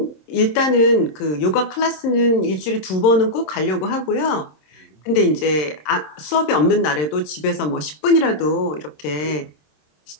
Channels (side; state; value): right; late; 26 ms